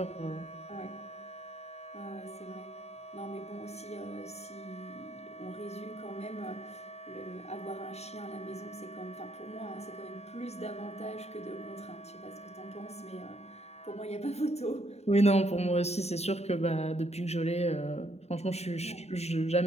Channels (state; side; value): late; right; 0.31 ms